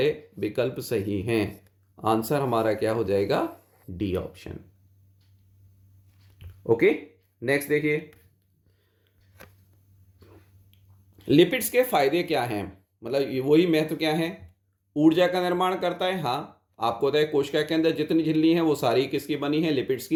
विकल्प सही हैं। आंसर हमारा क्या हो जाएगा? D option. ओके, नेक्स्ट देखिए, लिपिड्स के फायदे क्या हैं, मतलब वही महत्व क्या है? ऊर्जा का निर्माण करता है, हाँ। आपको पता है कोशिका के अंदर जितनी झिल्ली हैं वो सारी किसकी बनी है? लिपिड्स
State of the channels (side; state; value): both; identical; correlation 1.00